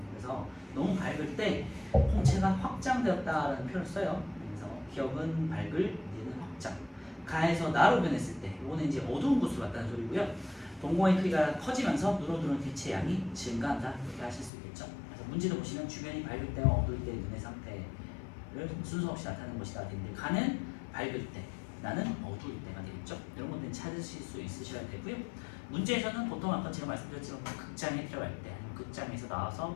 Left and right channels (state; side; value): drops out; right; at 14.5 s